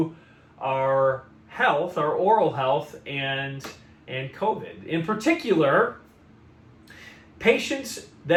our health, our oral health, and COVID. In particular, patients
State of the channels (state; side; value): identical; both; correlation 1.00